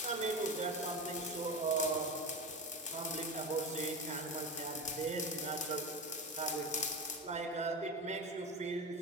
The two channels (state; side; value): normal; both; correlation 0.23